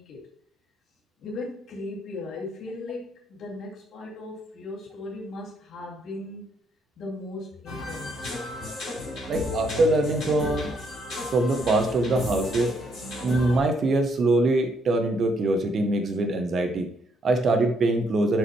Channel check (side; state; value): both; normal; correlation 0.73